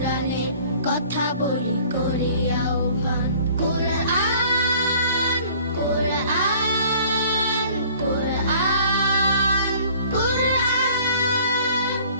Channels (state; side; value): inverted; both; correlation -0.52